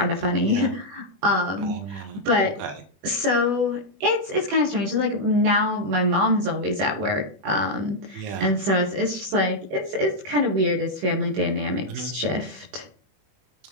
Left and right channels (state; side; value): late; left; 21 ms